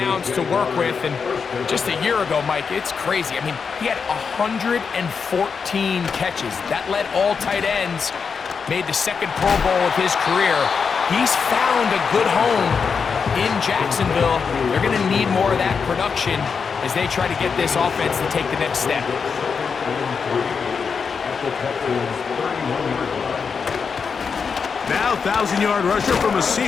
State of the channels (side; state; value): right; quieter; 5.8 dB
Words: to work with. And just a year ago, Mike, it's crazy. I mean, he had 114 catches. That led all tight ends, made the 2nd Pro Bowl of his career. He's found a good home in Jacksonville. They're going to need more of that production as they try to get this offense to take the next step. Now 1,000-yard rusher from a